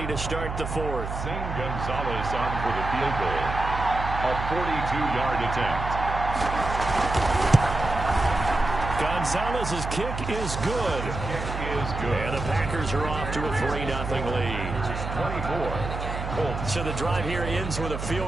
to start the 4th. Zane Gonzalez on for the field goal. A 42-yard attempt. Gonzalez's kick is good. And the Packers are off to a 3-0 lead. 24. So the drive here ends with a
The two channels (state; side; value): noise; right; hum, 6 dB below the sound